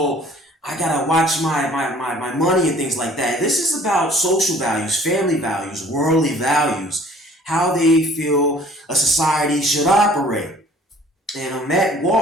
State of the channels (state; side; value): normal; both; correlation 0.53